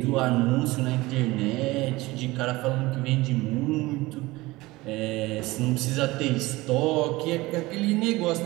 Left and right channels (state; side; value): quieter; left; 20.4 dB